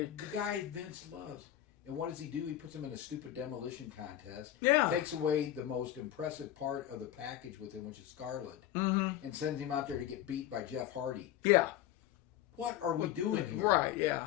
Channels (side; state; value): right; quieter; 12.1 dB